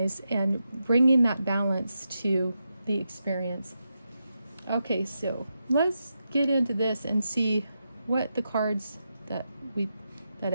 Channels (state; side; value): inverted; both; correlation -0.87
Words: and bringing that balance to the experience. Okay, so let's get into this and see what the cards that